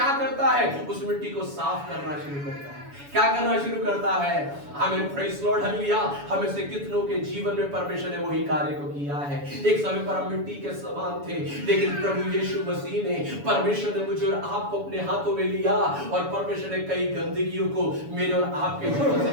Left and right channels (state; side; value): late; left; 7.1 ms